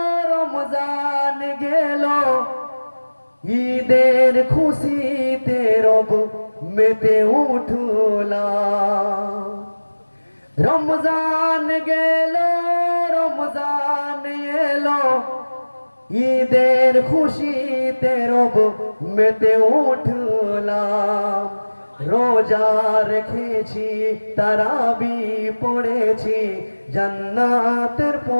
রমজান গেল, ঈদের খুশিতে রব মেতে উঠলাম। রমজান গেল, রমজান এলো, ঈদের খুশিতে রব মেতে উঠলাম। রোজা রেখেছি, তারাবি পড়েছি, জান্নাতের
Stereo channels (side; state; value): both; inverted; correlation -1.00